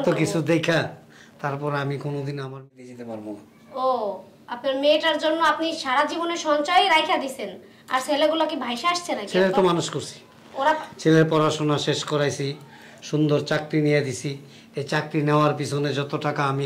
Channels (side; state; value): both; identical; correlation 1.00